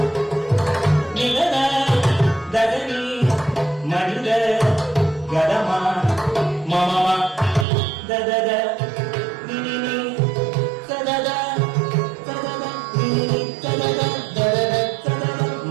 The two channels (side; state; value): left; drops out; at 7.7 s